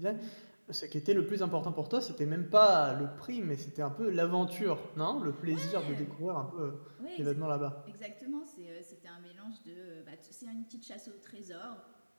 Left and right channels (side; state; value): both; inverted; correlation -1.00